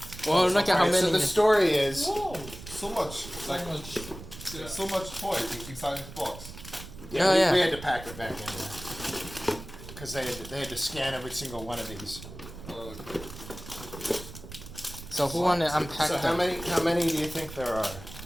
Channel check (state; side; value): noise; right; rumble, 14 dB below the sound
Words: Well, look at how Alright, many. so the story is. Whoa, so much, like so much toys inside this box. Yeah, Oh, we, yeah. we had to pack it back in there because they had to scan every single one of these. Okay. So who wanna unpack So them? how many do you think there are?